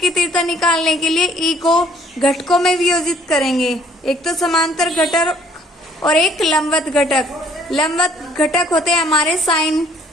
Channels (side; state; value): both; normal; correlation 0.60